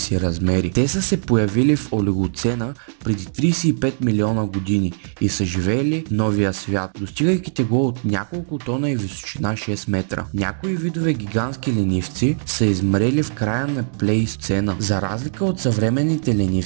размери. Те са се появили в Олигоцена преди 35 милиона години и са живеели в новия свят, достигайки тегло от няколко тона и височина 6 метра. Някои видове гигантски ленивци са измрели в края на Плейстоцена. За разлика от съвременните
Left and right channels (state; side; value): silent; left; digital silence